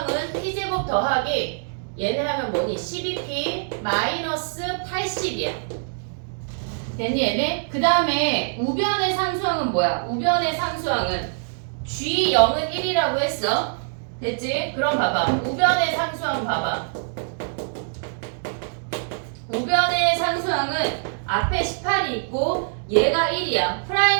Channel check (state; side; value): silent; left; digital silence